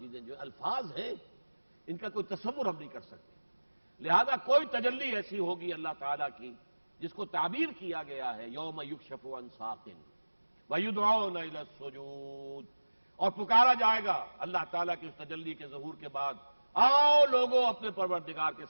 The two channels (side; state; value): both; inverted; correlation -1.00